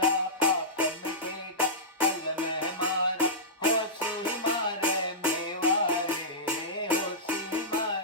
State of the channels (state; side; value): normal; both; correlation -0.15